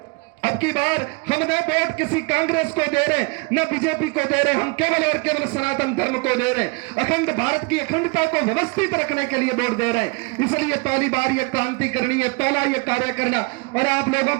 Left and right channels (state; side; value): quieter; left; 29.4 dB